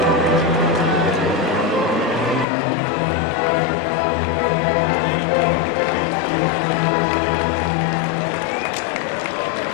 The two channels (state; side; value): drops out; right; at 2.5 s